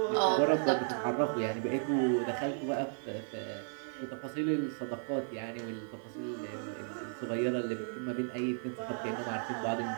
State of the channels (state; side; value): silent; left; 55 dB below the other